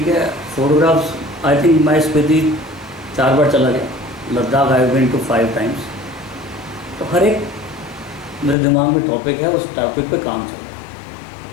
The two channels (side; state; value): right; drops out; at 8.6 s